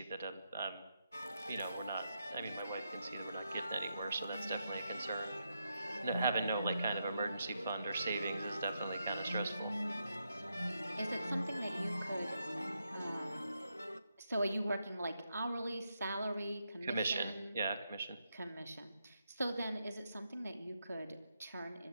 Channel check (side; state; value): both; inverted; correlation -0.83